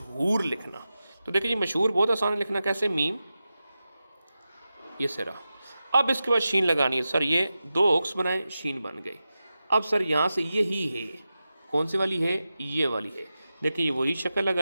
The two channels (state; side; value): inverted; both; correlation -0.93